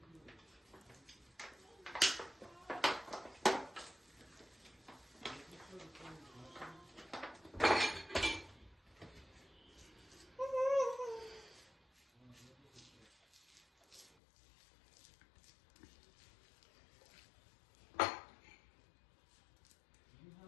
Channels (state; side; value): drops out; right; at 14.2 s